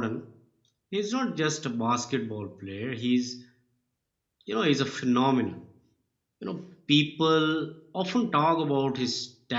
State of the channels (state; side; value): identical; both; correlation 1.00